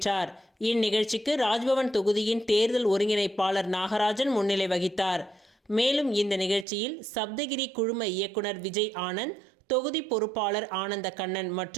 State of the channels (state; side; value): drops out; left; at 6.7 s